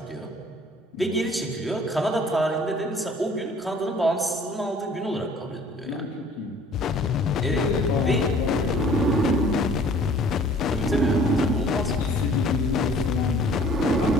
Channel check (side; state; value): both; normal; correlation 0.53